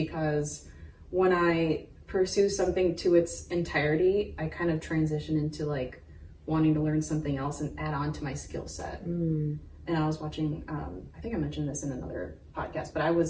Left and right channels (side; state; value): both; identical; correlation 1.00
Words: when I pursue something to its entirety, I kind of transition into like wanting to learn something else and add on to my skill set. And I was watching, I think I mentioned this in another podcast, but I